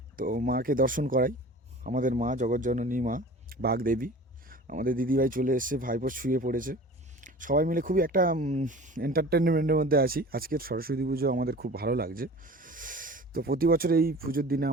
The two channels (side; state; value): both; normal; correlation 0.41